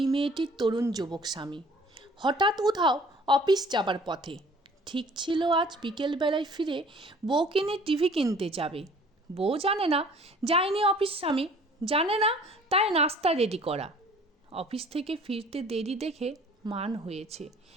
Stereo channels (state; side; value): normal; both; correlation 0.52